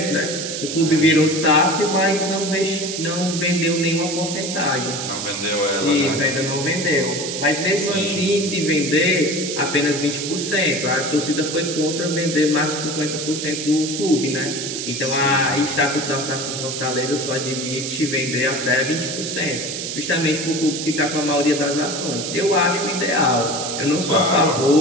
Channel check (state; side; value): noise; right; hiss, 5 dB below the sound